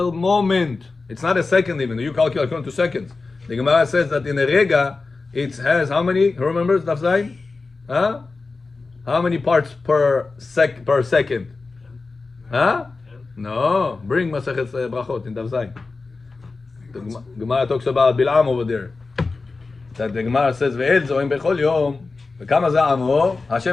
moment. It's not a second even. You calculate according to seconds. The Gemara says that in a rega, it has how many? Who remembers Daf Zayin? Huh? How many parts per second? Huh? No. Bring Masachet Brachot in Daf Zayin. The Gemara talks about Bil'am over there. That the Gemara says, "Ve'el zoim bechol yom, v'kama za'amo."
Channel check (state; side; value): quieter; right; 3.9 dB